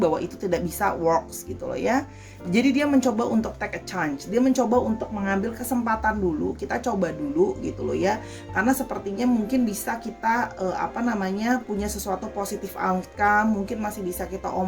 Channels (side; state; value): both; identical; correlation 1.00